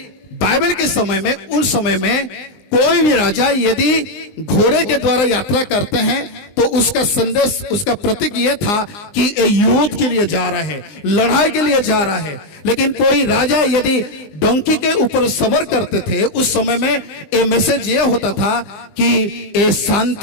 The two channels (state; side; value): late; right; 20 ms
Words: बाइबल के समय में, उस समय में कोई भी राजा यदि घोड़े के द्वारा यात्रा करते हैं तो उसका संदेश, उसका प्रतीक यह था कि ये युद्ध के लिए जा रहा है, लड़ाई के लिए जा रहा है। लेकिन कोई राजा यदि डोंकी के ऊपर सवार करते थे उस समय में ये मैसेज ये होता था कि ये